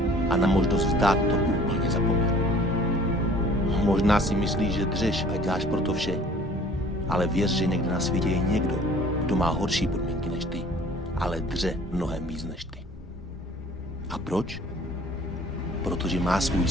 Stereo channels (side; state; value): both; normal; correlation 0.51